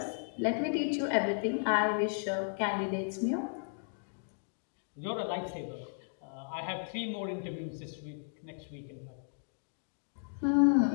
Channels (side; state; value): right; silent; digital silence